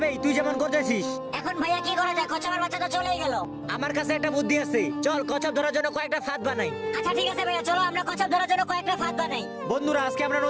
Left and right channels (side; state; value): both; identical; correlation 1.00